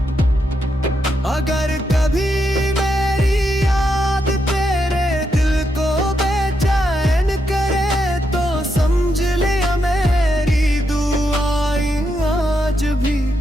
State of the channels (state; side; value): normal; both; correlation 0.82